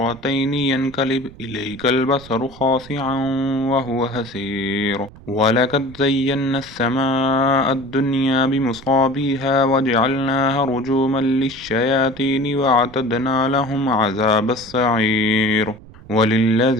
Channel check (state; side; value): noise; right; rumble, 20 dB below the sound